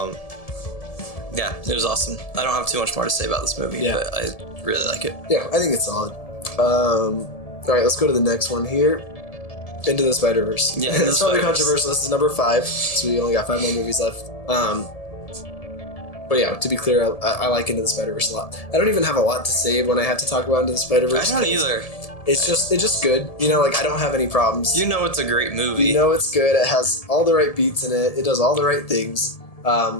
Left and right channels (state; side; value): late; right; 1.7 ms